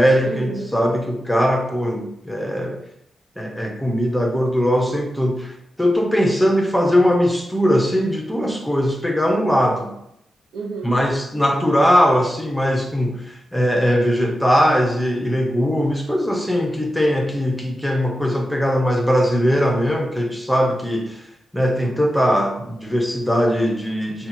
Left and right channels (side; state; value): both; normal; correlation 0.92